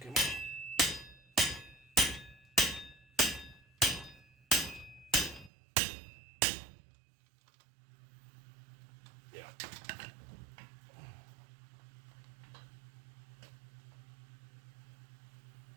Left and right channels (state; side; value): drops out; left; at 5.5 s